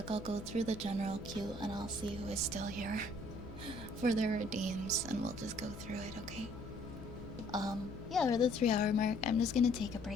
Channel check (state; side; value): noise; left; hum, 14 dB below the sound